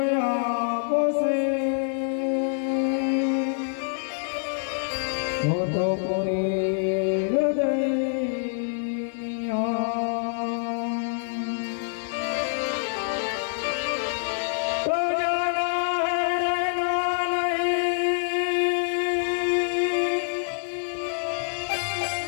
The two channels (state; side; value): silent; right; digital silence